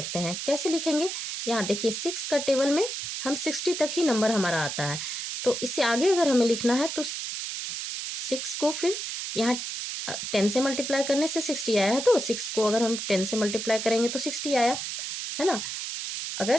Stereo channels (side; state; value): right; noise; hiss, 5 dB below the sound